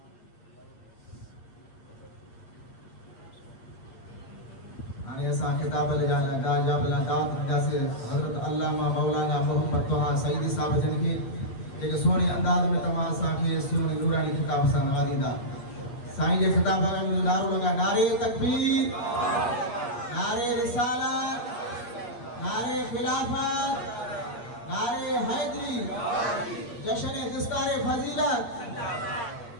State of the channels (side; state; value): right; late; 8.7 ms